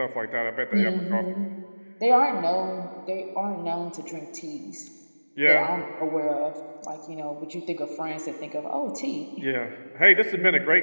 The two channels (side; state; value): both; inverted; correlation -1.00